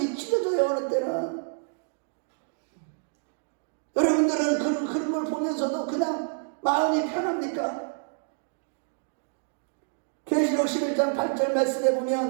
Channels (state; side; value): silent; left; digital silence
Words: 찢어져요. 어느 때는 여러분들은 그런 흐름을 보면서도 그냥 마음이 편합니까? 계시록 11장 8절 말씀에